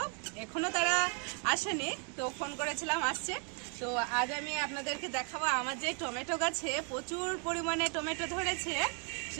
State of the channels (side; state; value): left; quieter; 38.6 dB